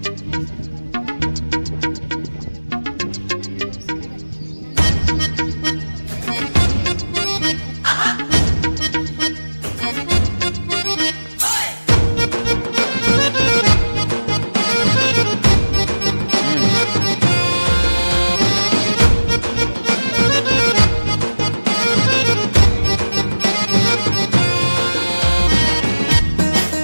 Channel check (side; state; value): both; inverted; correlation -1.00